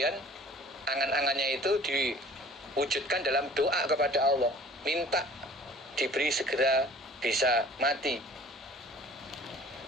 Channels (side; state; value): both; normal; correlation 0.49